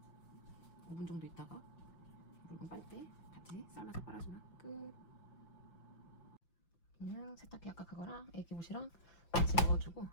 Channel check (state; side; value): late; right; 5.8 ms